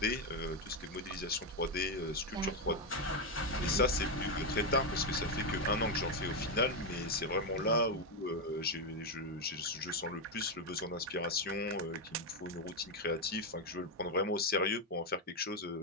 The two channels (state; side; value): normal; both; correlation 0.05